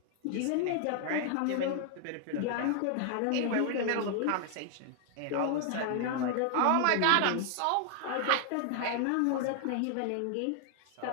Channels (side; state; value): both; different; correlation 0.00